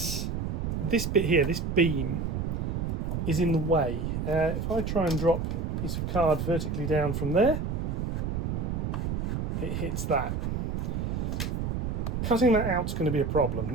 bit here, this beam, is in the way. If I try and drop a piece of card vertically down from there, it hits that. Cutting that out is going to be a problem.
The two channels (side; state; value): right; noise; rumble, 1 dB below the sound